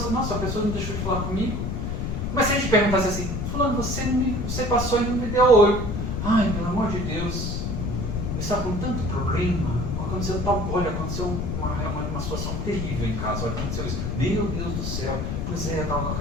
diz, nossa, a pessoa não deixou de falar comigo. Mas se a gente perguntasse assim, fulano, você passou e não me deu oi. Ai, pelo amor de Deus, eu estava com tanto problema, aconteceu uma situação terrível em casa, olha, aconteceu isso. Meu Deus do céu, pois é, eu estava com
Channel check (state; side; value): noise; left; rumble, 2 dB below the sound